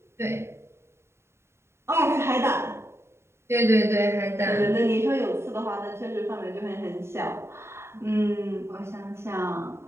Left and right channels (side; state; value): left; late; 0.13 ms